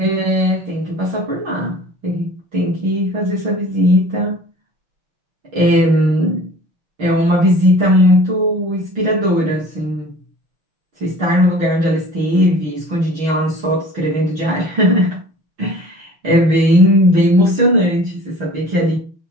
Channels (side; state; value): left; late; 6.2 ms